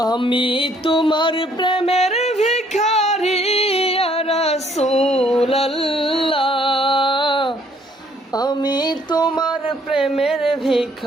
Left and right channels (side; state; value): both; normal; correlation 0.64